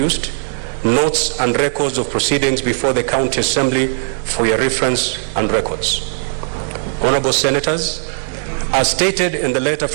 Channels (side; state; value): left; silent; 68 dB below the other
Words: notes and records of proceedings before the County Assembly for your reference and records. Honorable Senators, as stated in the letter